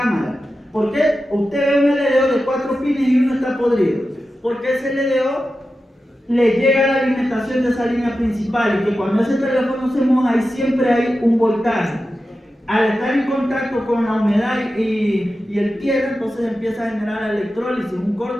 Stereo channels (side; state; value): both; normal; correlation 0.92